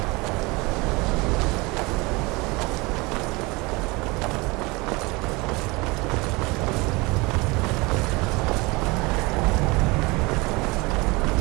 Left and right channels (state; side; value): quieter; left; 24.8 dB